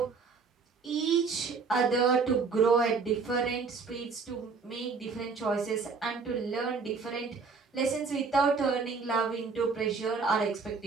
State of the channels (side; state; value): left; quieter; 4.9 dB